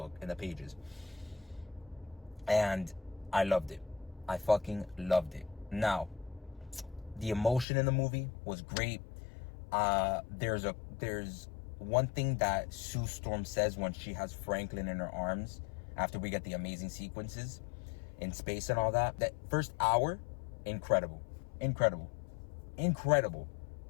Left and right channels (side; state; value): right; drops out; at 7.7 s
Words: in the pages. And I loved it. I fucking loved it. Now, the emotion in the movie was great. There's one thing that Sue Storm says when she has Franklin in her arms after we get the amazing sequences in space and all that. That first hour, incredible.